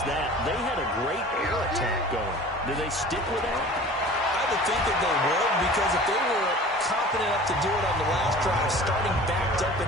that. They had a great air attack going. Do they stick with that? I would think that they would, because if they were confident enough to do it on the last drive, starting backed up in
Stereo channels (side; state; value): both; normal; correlation 0.42